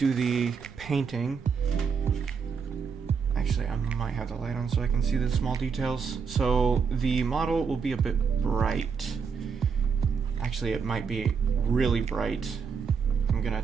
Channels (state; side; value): quieter; left; 6.0 dB